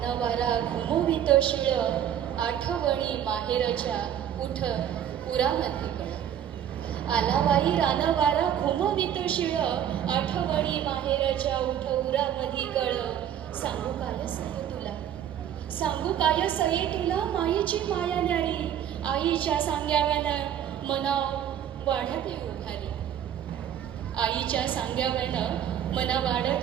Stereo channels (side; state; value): left; quieter; 9.9 dB